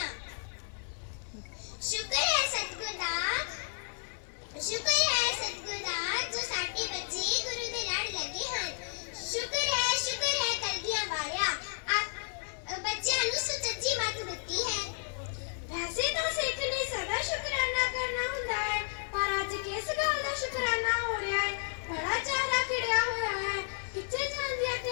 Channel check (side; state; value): right; silent; digital silence